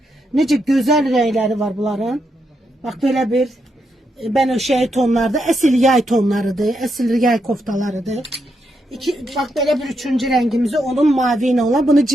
Nece güzel renkleri var bunların. Bak böyle bir benöşey tonlarda, esil yay tonlarıdır. Esil yay koftalarıdır. Bak böyle bir üçüncü rengimizi onun mavi olan, bunu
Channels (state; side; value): normal; both; correlation 0.81